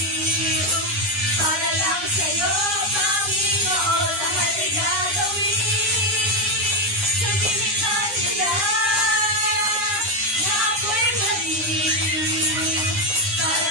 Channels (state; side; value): late; left; 9.7 ms